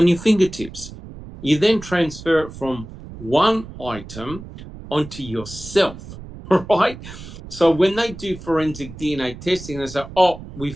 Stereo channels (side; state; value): right; noise; rumble, 14 dB below the sound